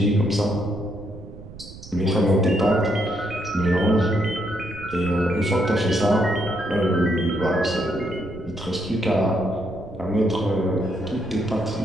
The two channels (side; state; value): right; noise; rumble, 16 dB below the sound